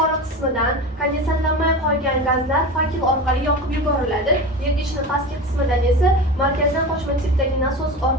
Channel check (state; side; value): normal; both; correlation 0.28